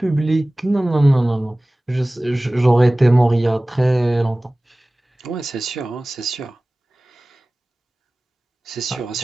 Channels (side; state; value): both; normal; correlation 0.98